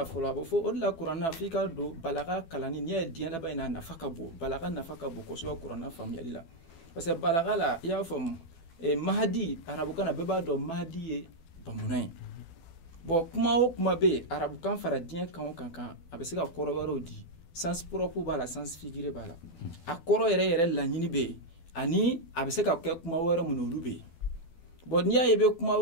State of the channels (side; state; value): right; late; 12 ms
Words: fɔlɔ a bɛ fɔ o de la kuranna f'i ka don balaga kalanni n'i ye diɲɛ laban in na nafa ka bon balaga nafa ka bon kosɛbɛ kuranna faamuyali la parce que balaga la i y'a faamu mahadi arabukan na bɛɛ b'a dɔn mahadi ye bamunan ye bon kuma o kuma bɛ yen arabukan fara diɲɛ kan o kan a bɛ se ka kɔrɔ wɛrɛw di sens propre b'a la sens figuré b'a la a kɔrɔ yɛrɛ laɲini bɛ yen ani a bɛ se ka kɛ kuma wɛrɛ mun olu bɛ yen bon n'i y'a ye i bɛ kuma